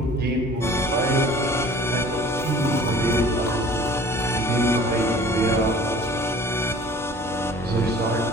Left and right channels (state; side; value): normal; both; correlation 0.48